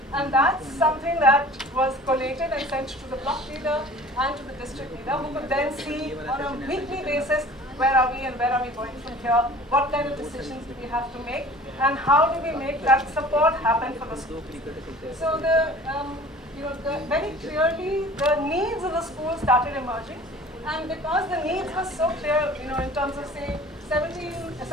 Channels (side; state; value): both; normal; correlation 0.45